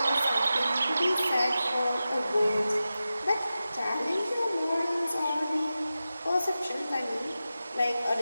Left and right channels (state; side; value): inverted; both; correlation -0.93